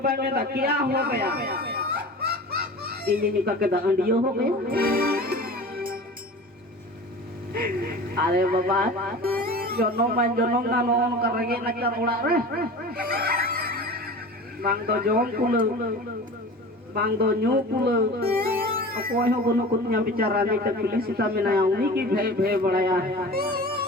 में ना क्या हो गया ini kakek dah andio ho gaya अरे बाबा jonom na non karage na karula re bang do jom pula bang do nyu pula akoy ho gono kunya bicara ni tak pilih sita menayang ni ki bhe bhe badaya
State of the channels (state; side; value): normal; both; correlation 0.36